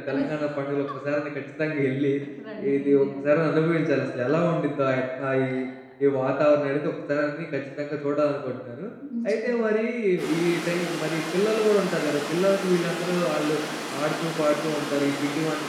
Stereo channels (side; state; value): both; identical; correlation 1.00